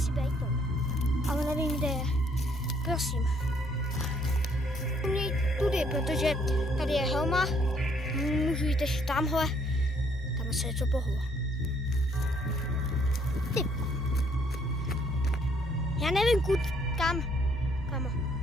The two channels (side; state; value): both; normal; correlation 0.66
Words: být Tom. Ale nevím, kde je. Prosím. Měj tudy, protože tady je helma. Můžu jít ještě tamhle. Tam se něco pohlo. Ty. Já nevím, kam.